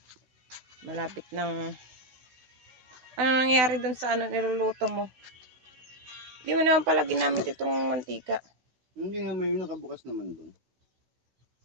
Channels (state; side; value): late; left; 16 ms